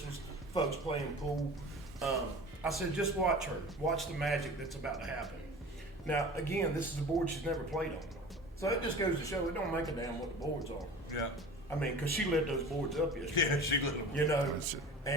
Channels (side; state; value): both; normal; correlation 0.38